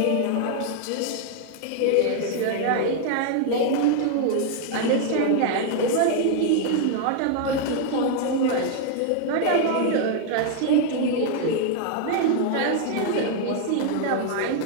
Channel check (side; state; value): both; different; correlation 0.00